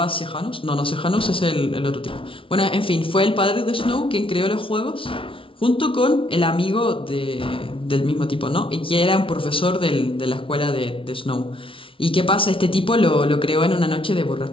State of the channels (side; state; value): right; late; 0.25 ms